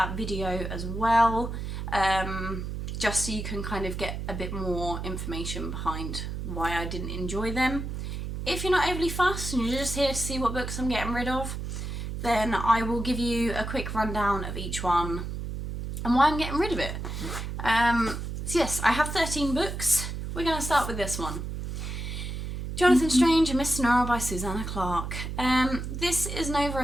video as well, just so you can kind of get a bit more information behind why I didn't enjoy them. If you're not overly fussed and you're just here to see what books I'm getting rid of, then I will give you a quick rundown of each one and why I'm getting rid of it. So yes, I have 13 books. We're going to start with this one. Jonathan Strange and Miss Sonora by Susanna Clarke. This is an over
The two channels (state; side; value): noise; right; hum, 5 dB below the sound